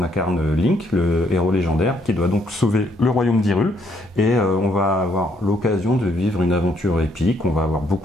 incarne Link, le héros légendaire, qui doit donc sauver le royaume d'Hyrule. Et on va avoir l'occasion de vivre une aventure épique. On va avoir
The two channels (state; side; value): normal; both; correlation 0.70